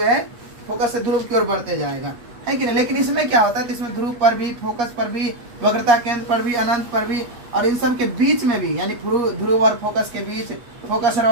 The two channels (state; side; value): late; left; 8.4 ms